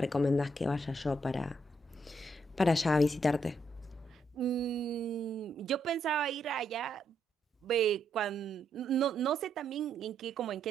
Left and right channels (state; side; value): normal; both; correlation 0.77